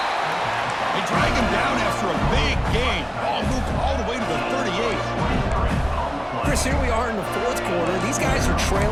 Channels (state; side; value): identical; both; correlation 1.00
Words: They drag him down after a big gain. Ball moved all the way to the 38. Chris, here we are in the 4th quarter. These guys are